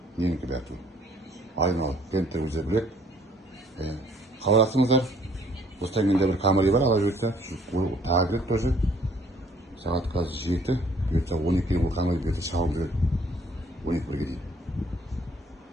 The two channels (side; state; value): both; normal; correlation 0.60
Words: Ненікі бәрі түгіл. Айналы, клиенттер өздері біледі. Хабарласыңыздар. Осыдан кенде бір камера бар, ала жіберді. Тағы керек тоже. Сағат қазір 7. Бұйыртса 12-ге бұл камера берді шағылып жүреді. 12-ге дейін.